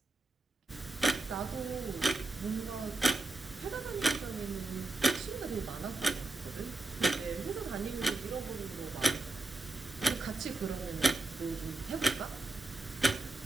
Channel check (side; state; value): left; quieter; 3.1 dB